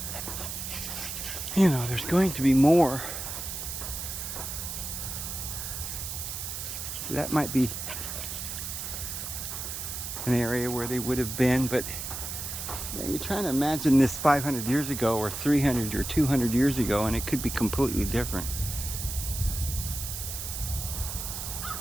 you know, there's going to be more. So that might be an area where they would have been, but you know, you're trying to imagine this 500 years ago or 300 or 200 years ago, and it could be completely different.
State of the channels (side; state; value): right; noise; hiss, 6 dB below the sound